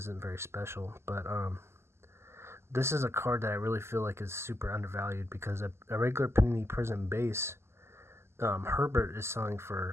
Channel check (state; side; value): late; left; 0.12 ms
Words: very special. But this is a card that I really feel like is super undervalued because a regular Panini Prism base, Herbert is selling